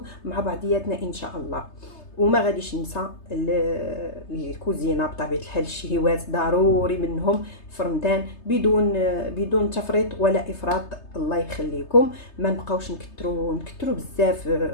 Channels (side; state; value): right; late; 3.3 ms